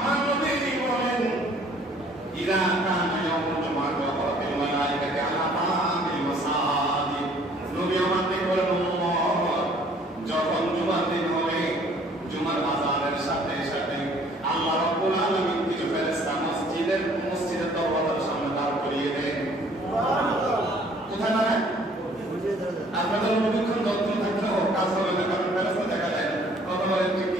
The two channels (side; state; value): both; normal; correlation 0.57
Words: নবী বলেন, ইযা কানা ইয়াউমুল জুমআহ ওয়া রাফিল মালায়েকাতি আলা বাবিল মাসাজিদ, নবী আমাদের বলেন, যখন জুমার দিন হবে, জুমার আযানের সাথে সাথে আল্লাহ রাব্বুল আলামিন কিছু ফেরেশতা মসজিদের দরজার সামনে দাঁড় করিয়ে দেন। সুবহানাল্লাহ। কোথায় দাঁড়ায়? আপনাদের অনুক্ষণ যত্ন থাকলেও কাজ হবে না, কারণ ফেরেশতা দেখা যায়। কথা বলেন ঠিক